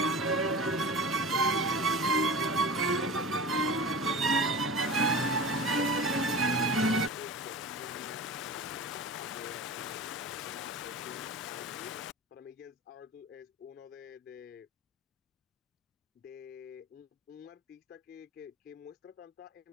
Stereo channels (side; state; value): both; normal; correlation 0.33